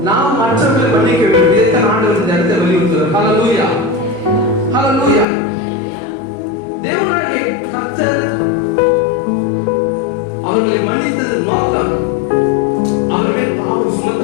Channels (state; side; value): drops out; right; at 5.2 s